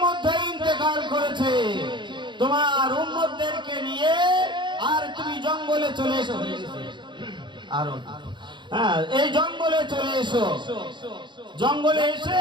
মধ্যে ইন্তেকাল করেছে। তোমার উম্মতদেরকে নিয়ে আর তুমি জঙ্গলে চলে এসো। আর এই জঙ্গলে চলে এসো। জঙ্গলে এসে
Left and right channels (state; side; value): late; left; 0.23 ms